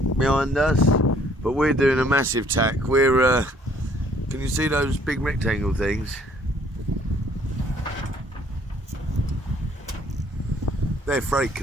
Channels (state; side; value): normal; both; correlation 0.61